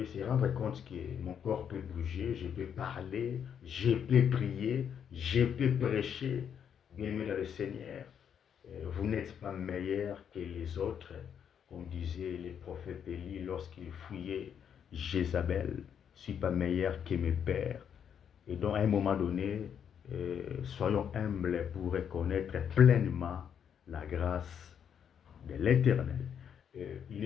se rendre compte que mon corps peut bouger, je peux parler, je peux prier, je peux prêcher, bien aimé le Seigneur, vous n'êtes pas meilleur que les autres, comme disaient les prophètes Élie lorsqu'ils fouillaient Jézabel. Je ne suis pas meilleur que mes pères. Et donc, à un moment donné, soyons humbles pour reconnaître pleinement la grâce de l'Éternel. Il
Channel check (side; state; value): right; quieter; 8.2 dB